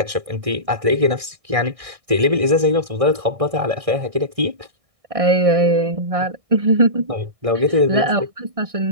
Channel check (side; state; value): left; late; 1.6 ms